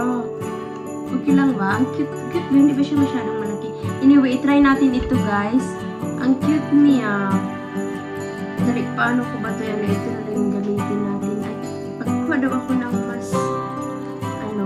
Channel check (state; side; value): identical; both; correlation 1.00